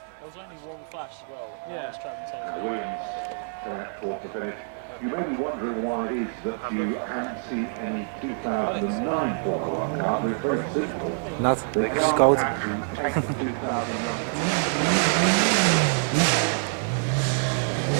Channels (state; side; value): silent; left; 60 dB below the other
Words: You may be wondering why it is that you haven't seen any 2009 Formula One car, but it's very simple. Nat, They het is can't koud. actually take the 2009.